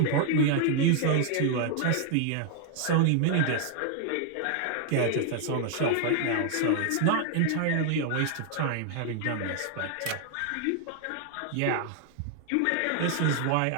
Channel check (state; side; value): different; both; correlation 0.00